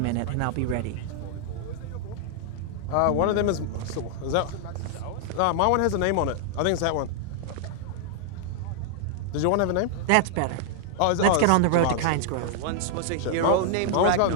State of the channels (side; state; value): both; different; correlation -0.01